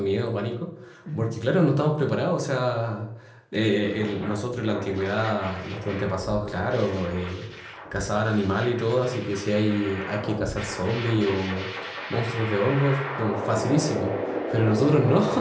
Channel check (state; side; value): identical; both; correlation 1.00